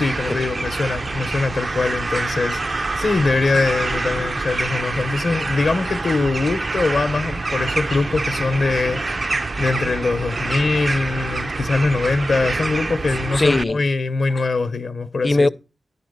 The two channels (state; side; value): normal; both; correlation 0.93